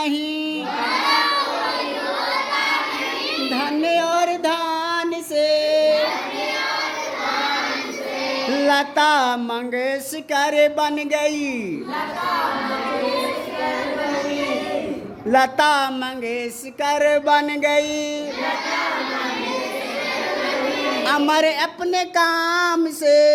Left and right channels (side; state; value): both; identical; correlation 1.00